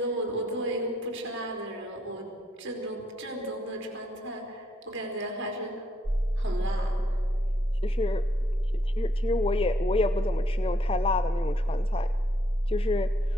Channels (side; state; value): both; normal; correlation 0.73